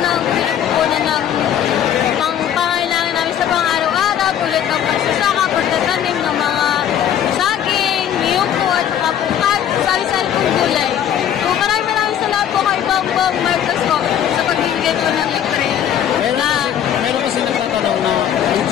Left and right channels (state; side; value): quieter; right; 9.9 dB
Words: ng pinagkukunan ng pangangailangan namin sa pang-araw-araw, tulad ng pagsasaka, pagtatanim ng mga saging, niyong po at saka po sari-sari pong gulay. So maraming salamat po kay Bongbong Marcos po sa pagbibigay po ng libre. Meron kasi nagtatanong na